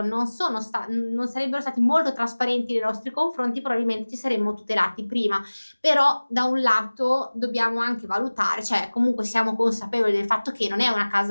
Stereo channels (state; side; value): inverted; both; correlation -1.00